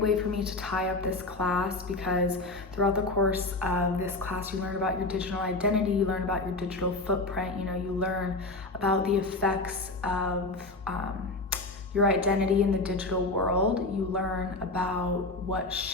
for me to tie up this class because throughout the course of this class, you learn about your digital identity, you learn about your digital footprint, you learn about the effects of your identity in the digital world. You learn about what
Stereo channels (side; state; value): right; quieter; 3.0 dB